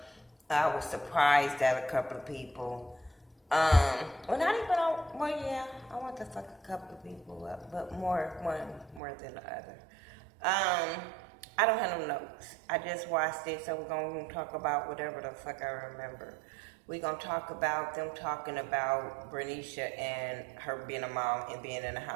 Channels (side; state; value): left; drops out; at 9.0 s